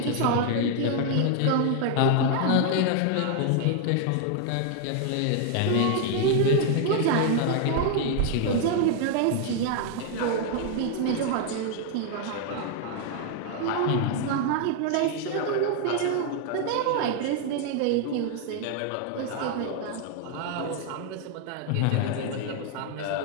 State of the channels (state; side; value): different; both; correlation 0.00